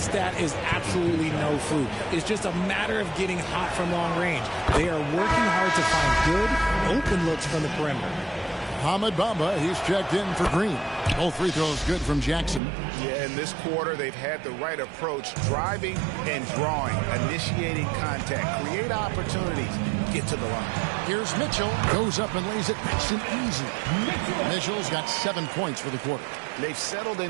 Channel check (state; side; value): drops out; left; at 12.6 s